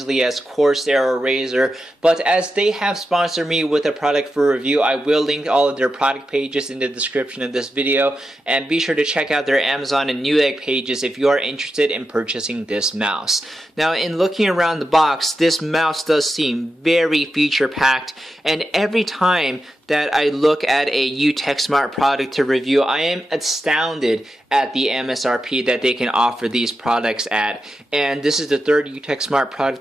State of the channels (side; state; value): both; normal; correlation 0.89